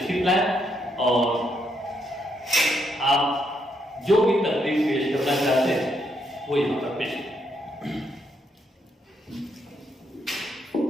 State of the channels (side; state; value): both; normal; correlation 0.76